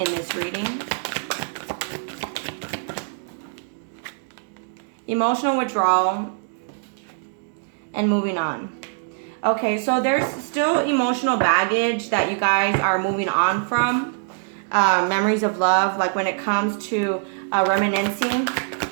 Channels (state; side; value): silent; left; digital silence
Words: this reading? Emotional withdrawal and moving on. Okay, so there's still emotional baggage that you guys are moving on from. Memories of love, like when it comes to reminiscing.